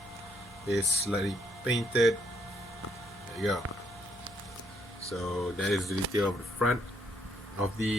is slightly painted. There you go. So that is the detail of the front of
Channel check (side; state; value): right; noise; hum, 21 dB below the sound